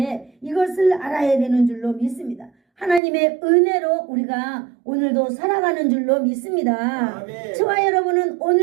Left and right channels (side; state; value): left; drops out; at 3.0 s